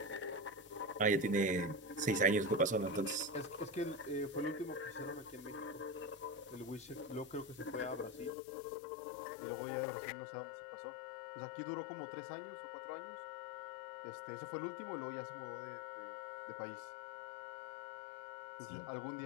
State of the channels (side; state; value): right; drops out; at 8.3 s